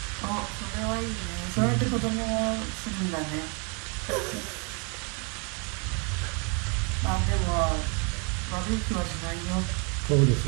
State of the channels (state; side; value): quieter; left; 34.8 dB